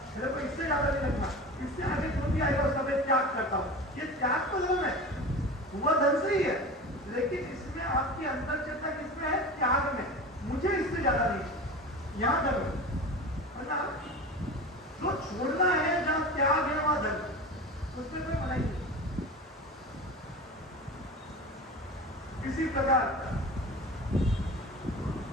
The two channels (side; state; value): both; normal; correlation 0.32